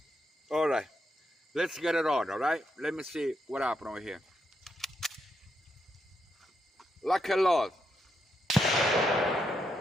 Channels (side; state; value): both; normal; correlation 0.81